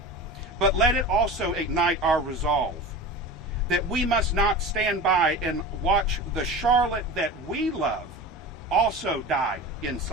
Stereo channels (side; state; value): both; normal; correlation 0.32